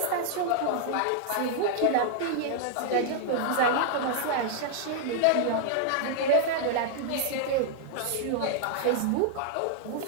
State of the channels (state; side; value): different; both; correlation -0.01